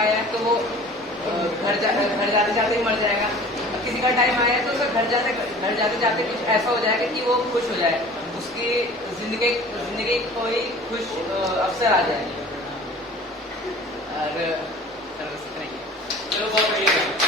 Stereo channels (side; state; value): both; normal; correlation 0.44